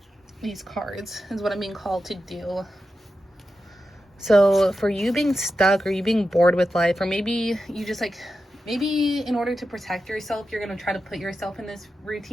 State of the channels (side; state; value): both; normal; correlation 0.90